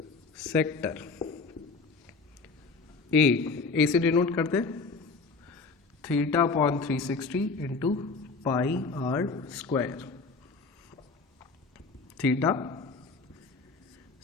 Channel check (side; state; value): right; quieter; 4.3 dB